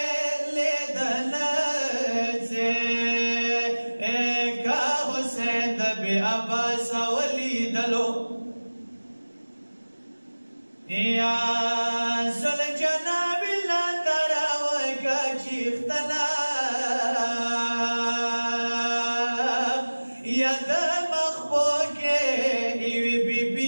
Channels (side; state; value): both; inverted; correlation -1.00